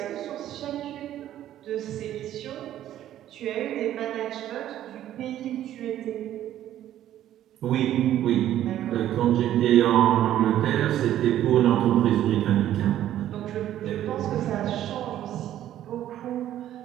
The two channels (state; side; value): quieter; left; 12.2 dB